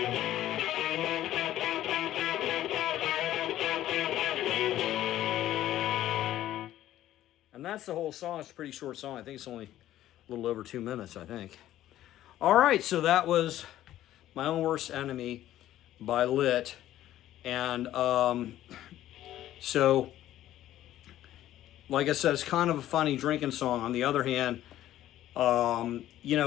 And that's the whole song. It's a pretty short song. I think it's only a little over 2 minutes, I think. All right, so that was My Own Worst Enemy by Lit. And so, like I said, it's kind of a funny drinking song. On the other hand, you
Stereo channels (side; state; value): right; quieter; 13.2 dB